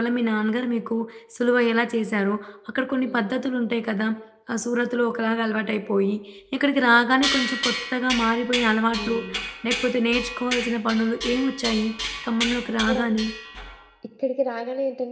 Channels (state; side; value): identical; both; correlation 1.00